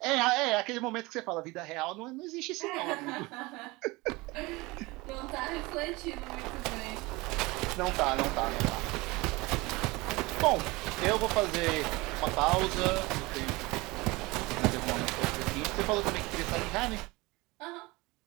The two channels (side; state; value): left; quieter; 22.9 dB